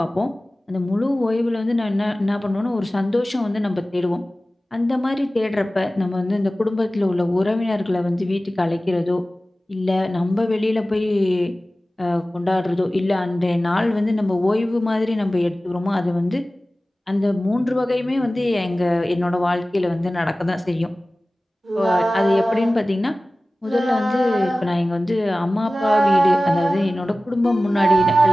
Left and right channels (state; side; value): normal; both; correlation 0.97